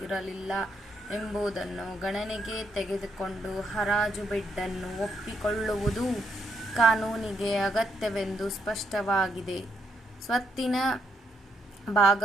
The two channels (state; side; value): normal; both; correlation 0.76